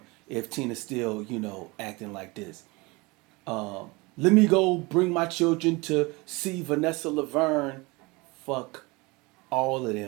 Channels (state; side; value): quieter; left; 25.0 dB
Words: if Tina's still, acting like this. Let me go bring my children to see Vanessa Laverne. Fuck all of